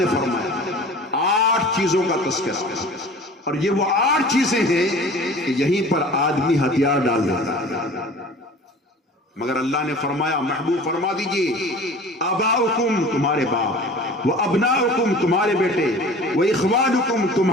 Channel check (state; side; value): normal; both; correlation 0.42